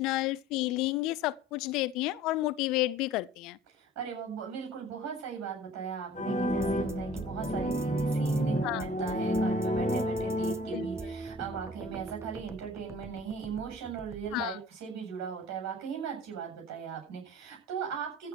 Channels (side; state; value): both; normal; correlation 0.45